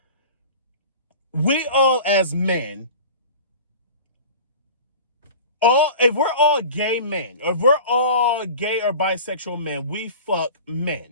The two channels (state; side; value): inverted; both; correlation -0.38